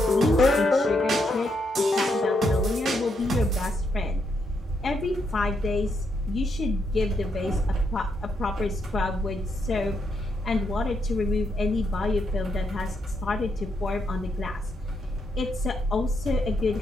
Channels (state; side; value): normal; both; correlation 0.78